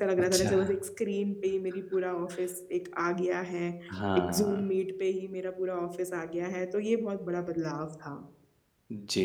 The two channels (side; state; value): both; identical; correlation 1.00